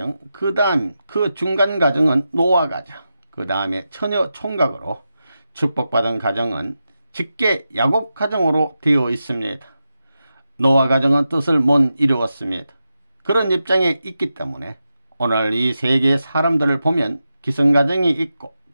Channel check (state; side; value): inverted; both; correlation -0.90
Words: 그 다음 그 중간 가정은 노아 가정, 그 다음에 처녀 총각으로 축복받은 가정은 직계 야곱 가정으로 되어 있습니다. 노아 가정은 뜻을 못 이루었습니다. 그런 입장에 있기 때문에 오늘 이 세계의 사람들을 보면 기성가정이 있고